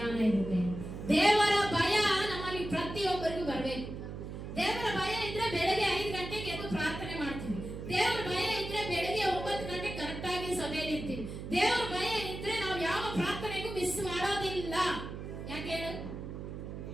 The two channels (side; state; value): right; noise; hum, 8 dB below the sound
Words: ಇರುತ್ತೆ. ದೇವರ ಭಯ ನಮ್ಮಲ್ಲಿ ಪ್ರತಿಯೊಬ್ಬರಿಗೂ ಬರಬೇಕು. ದೇವರ ಭಯ ಇದ್ರೆ ಬೆಳಗ್ಗೆ 5 ಗಂಟೆಗೆ ಎದ್ದು ಪ್ರಾರ್ಥನೆ ಮಾಡ್ತೀವಿ. ದೇವರ ಭಯ ಇದ್ರೆ ಬೆಳಗ್ಗೆ 9 ಗಂಟೆ ಕರೆಕ್ಟ್ ಆಗಿ ಸಭೆಯಲ್ಲಿ ಇರ್ತೀವಿ. ದೇವರ ಭಯ ಇದ್ರೆ ನಾವು ಯಾವ ಪ್ರಾರ್ಥನೆಗೂ ಮಿಸ್ ಮಾಡೋದಿಲ್ಲ. ಯಾಕೆ ಹೇಳು?